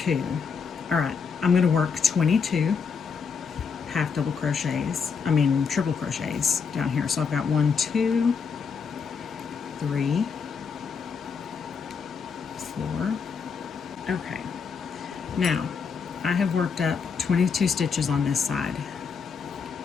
All right, I'm going to work 22 half double crochets, triple crochets down here. So I've got 1, 2, 3, 4. Okay. Now, I have worked up 22 stitches on this side.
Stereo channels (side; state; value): right; quieter; 5.8 dB